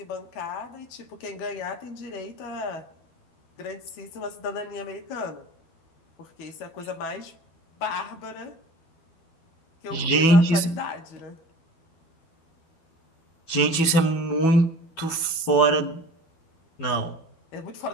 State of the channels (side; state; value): right; late; 12 ms